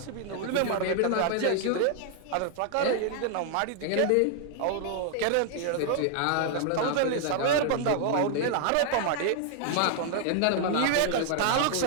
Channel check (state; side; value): different; both; correlation 0.00